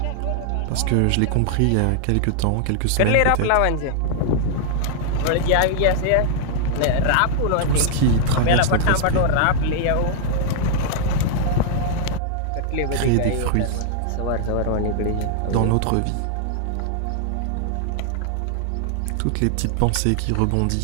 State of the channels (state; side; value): different; both; correlation -0.01